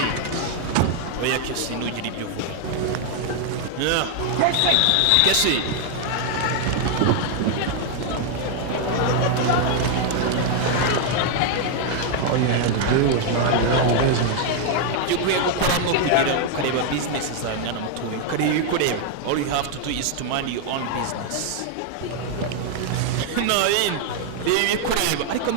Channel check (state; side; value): different; both; correlation 0.00